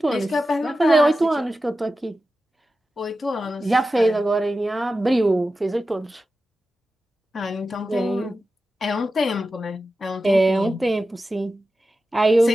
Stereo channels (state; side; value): normal; both; correlation 0.93